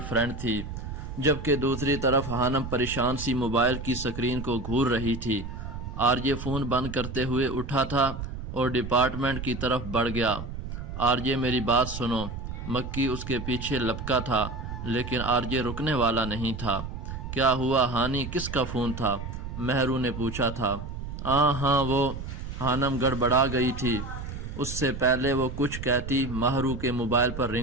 فرینڈ تھی، جبکہ دوسری طرف ہانم پریشان سی موبائل کی سکرین کو گھور رہی تھی۔ آرجے فون بند کرتے ہوئے اٹھا تھا اور ڈپارٹمنٹ کی طرف بڑھ گیا۔ آرجے میری بات سنو۔ مکی اس کے پیچھے لپکا تھا، لیکن آرجے رکنے والا نہیں تھا۔ کیا ہوا ہانی، کس کا فون تھا؟ مہرو نے پوچھا تھا۔ ہاں وہ ہانم گڑبڑا گئی تھی، اس سے پہلے وہ کچھ کہتی مہرو کے موبائل پر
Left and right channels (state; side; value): noise; right; rumble, 7 dB below the sound